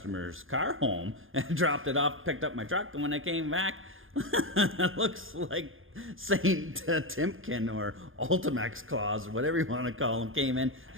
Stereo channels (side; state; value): left; late; 0.59 ms